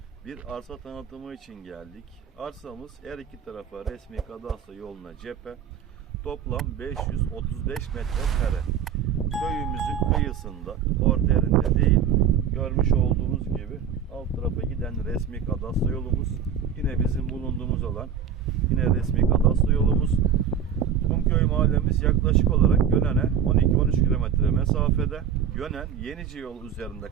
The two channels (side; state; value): left; quieter; 7.9 dB